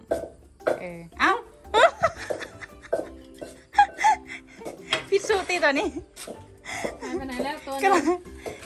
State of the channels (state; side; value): identical; both; correlation 1.00